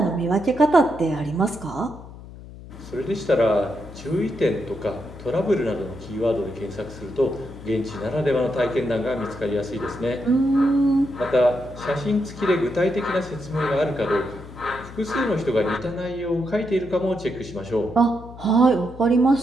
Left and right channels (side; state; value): left; noise; hum, 16 dB below the sound